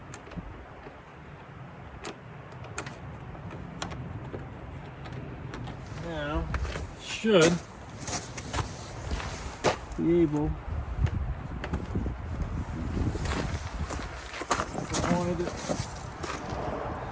Now, should be able, if I wanted it.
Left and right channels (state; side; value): identical; both; correlation 1.00